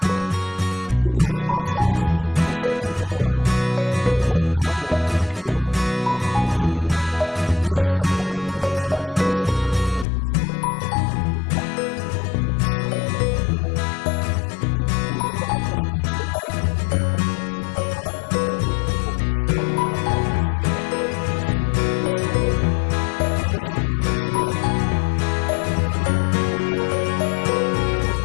botão. Então a situação é a seguinte, você tem de um lado um botão, um interruptor, com o terminal estanhado, a gente chama de estanhado quando você faz esse procedimento de colocar um pouquinho de solda no terminal. E do outro lado você tem um fio elétrico com a ponta desencapada e também com um pouco de solda na ponta, ou seja, um fio estanhado. Aí você encosta o fio elétrico no terminal do botão e com a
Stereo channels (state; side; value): drops out; right; at 10.1 s